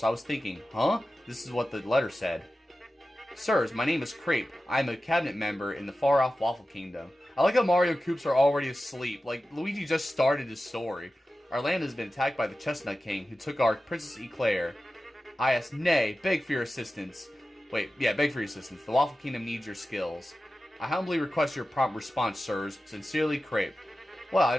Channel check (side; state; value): both; normal; correlation 0.94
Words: I was thinking, huh? This is what the letter said. Sirs, my name is Crepe. I am a cabinet member in the far-off Waffle Kingdom. I like how Mario Koops are already asleep. Luigi just started his story. Our land has been attacked by the Chestnut King, who took our Princess Eclair. I asked, nay, beg for your assistance. Beg for your assistance. The Waffle Kingdom needs your skills. I humbly request your prompt response, sirs. Sincerely, Crepe. Well, I